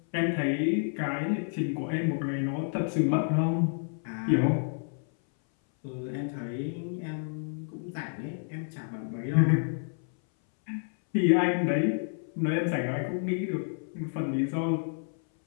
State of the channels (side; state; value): right; silent; 58 dB below the other